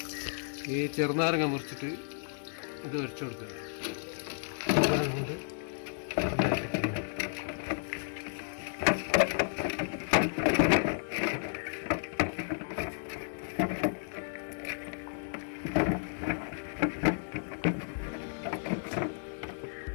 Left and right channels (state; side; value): silent; right; digital silence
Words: ഈ ചെറുനാരങ്ങ മുറിച്ചിട്ട് ഇത് വരച്ചു കൊടുക്കുക. കൊണ്ട്